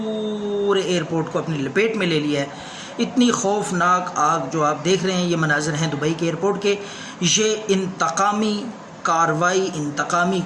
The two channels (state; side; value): identical; both; correlation 1.00